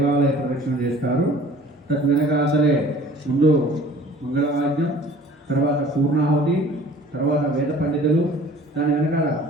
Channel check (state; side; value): normal; both; correlation 0.49